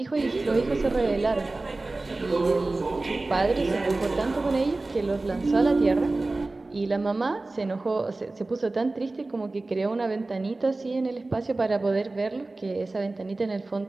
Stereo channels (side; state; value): left; quieter; 3.1 dB